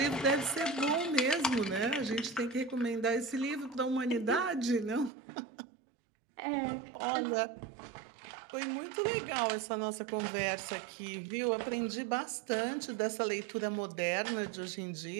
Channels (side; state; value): left; drops out; at 5.1 s